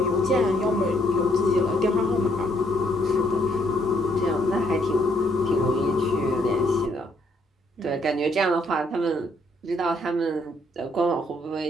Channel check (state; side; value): normal; both; correlation 0.70